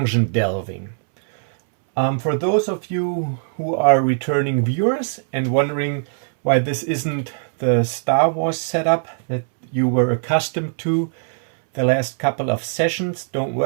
delving. For those of you who are returning viewers and wondering why this isn't the Star Wars setup that you were accustomed to the last couple of sessions, don't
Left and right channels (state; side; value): silent; left; 65 dB below the other